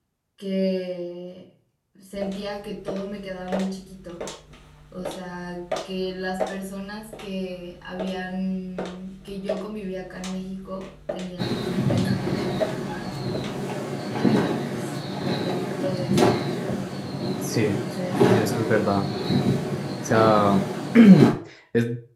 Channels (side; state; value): both; identical; correlation 1.00